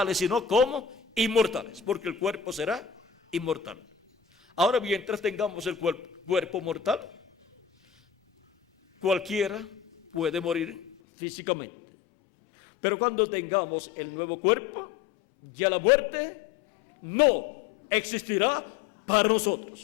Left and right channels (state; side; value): drops out; right; at 11.0 s